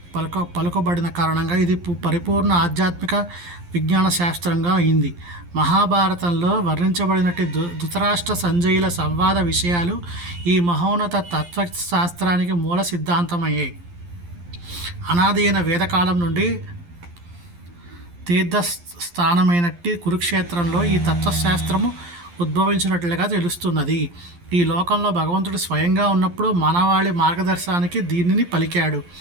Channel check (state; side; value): late; left; 11 ms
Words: పలుకబడిన కారణంగా ఇది పరిపూర్ణ ఆధ్యాత్మిక విజ్ఞాన శాస్త్రంగా అయింది. మహాభారతంలో వర్ణించబడినట్టు ధృతరాష్ట్ర సంజయుల సంవాద విషయాలు ఈ మహోన్నత తత్వశాస్త్రానికి మూల సిద్ధాంతమయ్యాయి. అనాది అయిన వేదకాలం నుండి తీర్థస్థానమైనట్టి కురుక్షేత్రంలో ఈ తత్వశాస్త్రము ఉద్భవించినట్లుగా తెలుస్తున్నది. ఈ లోకంలో భగవంతుడు స్వయంగా ఉన్నప్పుడు మానవాళి మార్గదర్శనానికి దీనిని పలికాడు.